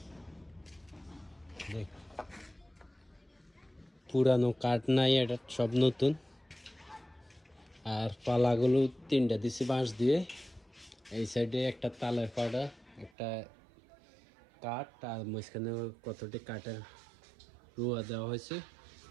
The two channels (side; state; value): left; drops out; at 13.1 s